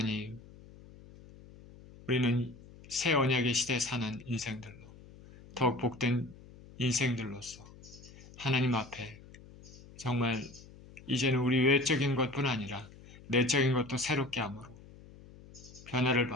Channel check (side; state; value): left; noise; hum, 20 dB below the sound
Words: 우리는 새 언약의 시대에 사는 인생들로 더욱 복된 인생들로서 하나님 앞에 정말 이제는 우리 외적인 것뿐 아니라 내적인 것도 새롭게 함으로 변화를